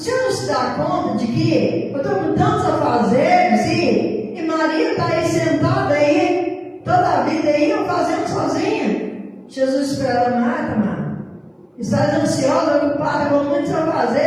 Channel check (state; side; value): identical; both; correlation 1.00